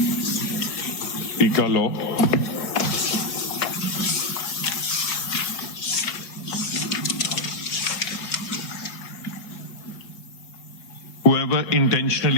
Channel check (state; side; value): late; right; 4.9 ms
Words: PICA law. Whoever